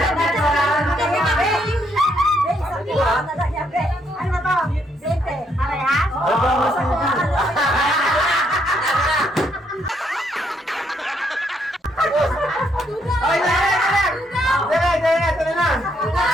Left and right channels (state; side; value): normal; both; correlation 0.73